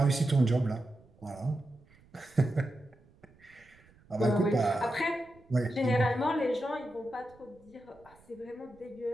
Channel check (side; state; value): right; noise; rumble, 28 dB below the sound